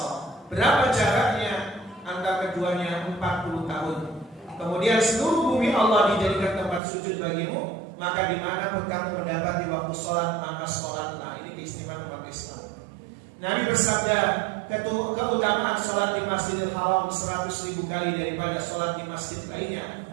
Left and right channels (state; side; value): drops out; left; at 6.8 s